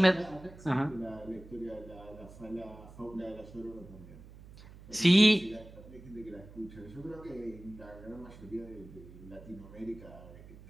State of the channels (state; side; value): noise; right; hum, 18 dB below the sound